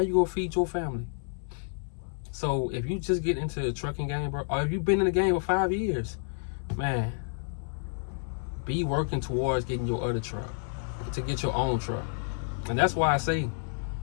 gonna feed your family? So if you just get into the trucking game, bro, or if you've been in the game for 5 years, man, be working towards getting your other truck, to get your own truck. And that's why I say,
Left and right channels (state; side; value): silent; right; 58 dB below the other